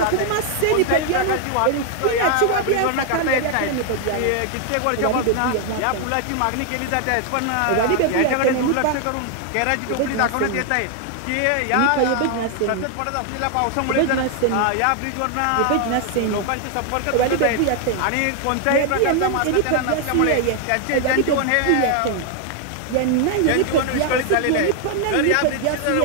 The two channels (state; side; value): different; both; correlation 0.00